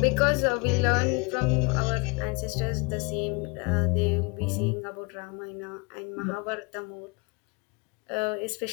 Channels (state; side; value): quieter; right; 29.7 dB